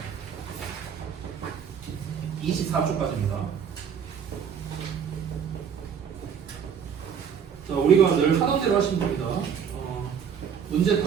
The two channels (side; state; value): left; quieter; 7.4 dB